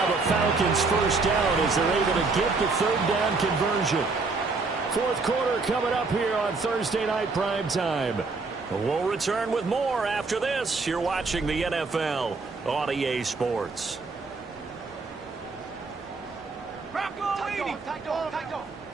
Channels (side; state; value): left; quieter; 4.0 dB